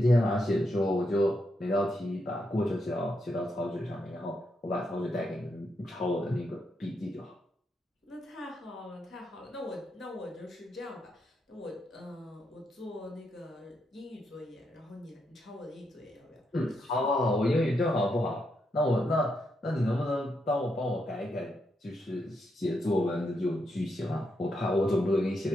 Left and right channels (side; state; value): both; normal; correlation 0.82